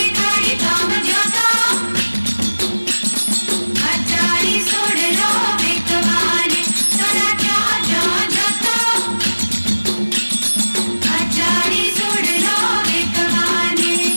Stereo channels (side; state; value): both; inverted; correlation -1.00